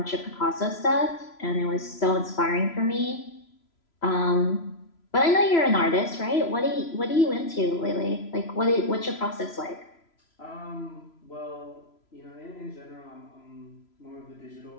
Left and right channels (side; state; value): right; late; 3.0 ms